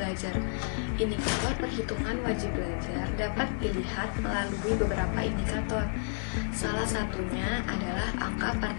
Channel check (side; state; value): right; silent; digital silence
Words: Indikator perhitungan wajib belajar dapat dilihat melalui beberapa indikator. Salah satunya adalah angka